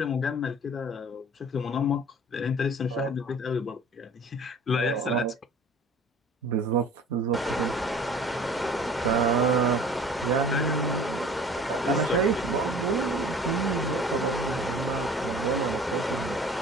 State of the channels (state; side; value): normal; both; correlation 0.46